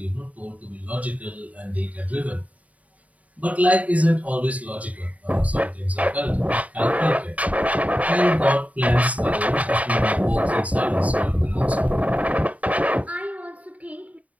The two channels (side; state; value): left; late; 0.070 ms